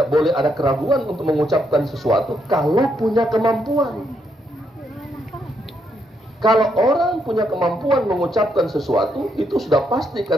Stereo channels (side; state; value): both; normal; correlation 0.77